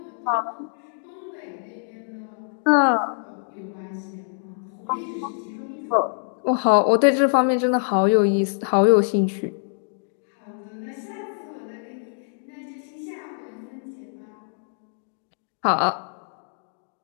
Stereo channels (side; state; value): right; silent; digital silence